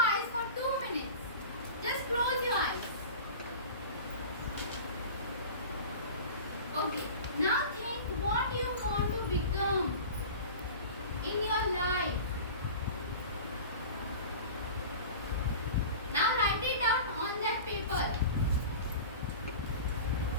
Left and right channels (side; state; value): both; inverted; correlation -0.35